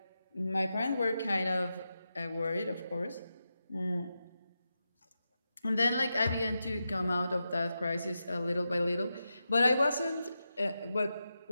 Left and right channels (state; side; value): inverted; both; correlation -0.89